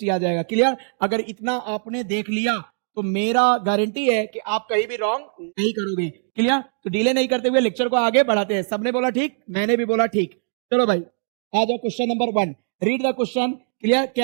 आ जाएगा। क्लियर? अगर इतना आपने देख लिया तो मेरा गारंटी है कि आप कहीं भी रॉन्ग नहीं करोगे। क्लियर? तो डिले नहीं करते हुए लेक्चर को आगे बढ़ाते हैं। सबने बोला ठीक, मैंने भी बोला ठीक। चलो भाई आ जाओ question number 1। Read the question. Clear?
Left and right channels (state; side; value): silent; left; digital silence